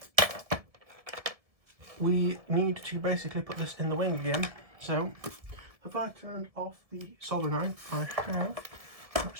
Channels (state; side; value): late; left; 1.7 ms